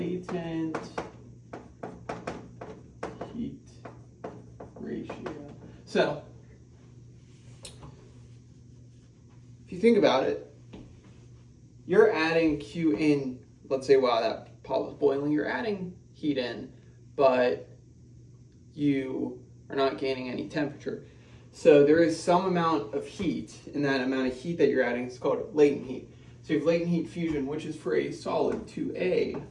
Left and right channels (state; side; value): identical; both; correlation 1.00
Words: heat ratio. So, if you think about it, you're adding Q in, let's say while that pot was boiling, you're adding heat in, but you are not gaining any temperature. So there is some amount of heat, and that amount of heat that you're adding is called latent heat. So you have latent heat fusion, which is for a solid to a